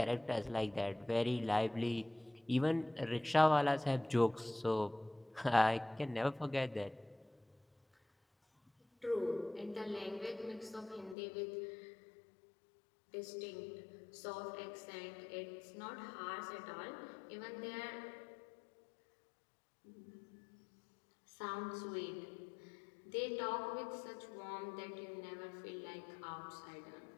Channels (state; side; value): drops out; right; at 11.2 s